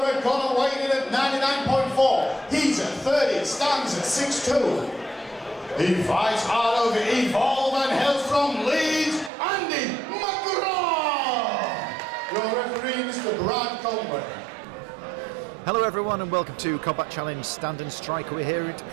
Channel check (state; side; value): drops out; left; at 9.3 s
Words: red corner, weighing in at 99.4. He's at 30, stands at 6'2". He fights out of Evolve and hails from Leeds, McGrath. Your referee, Mr. Brad Conway. Hello everyone and welcome to Combat Challenge Stand and Strike. We're here at